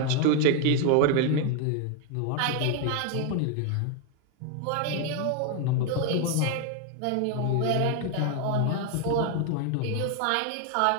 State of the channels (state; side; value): different; both; correlation 0.01